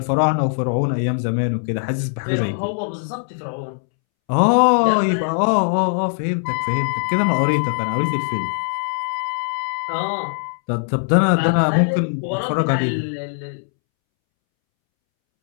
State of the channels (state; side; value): silent; right; 65 dB below the other